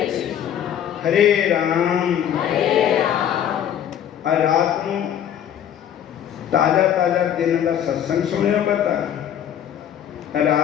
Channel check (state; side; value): quieter; right; 9.9 dB